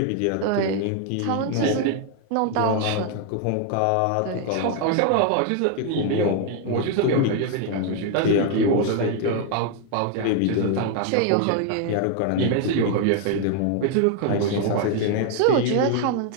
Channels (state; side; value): different; both; correlation 0.00